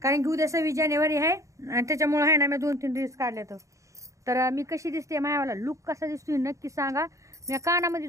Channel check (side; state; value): left; late; 0.15 ms